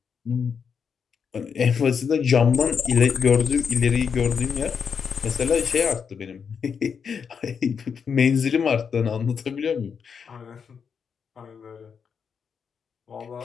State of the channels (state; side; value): quieter; right; 6.5 dB